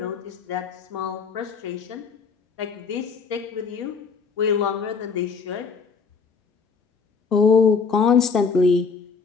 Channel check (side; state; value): right; quieter; 5.3 dB